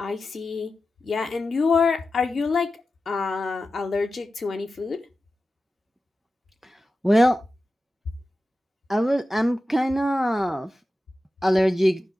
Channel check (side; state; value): both; normal; correlation 0.93